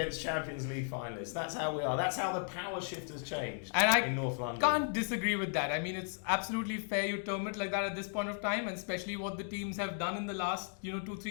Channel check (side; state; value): right; silent; 54 dB below the other